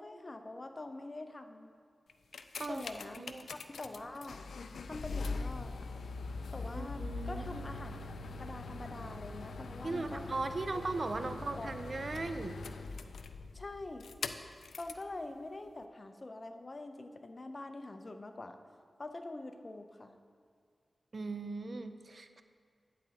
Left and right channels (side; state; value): both; normal; correlation 0.90